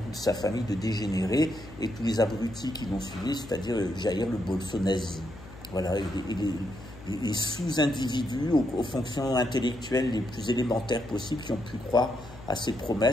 sa famille de dégénérés et tous les abrutis qui l'ont suivi, c'est-à-dire Jair le bolso-nazi. Voilà, les sous-individus aux fonctions intellectuelles les plus élémentaires possibles qui ont pu croire à ses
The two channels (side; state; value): left; noise; hum, 17 dB below the sound